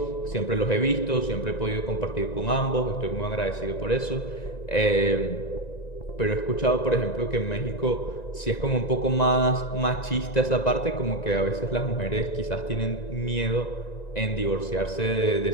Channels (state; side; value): late; right; 1.9 ms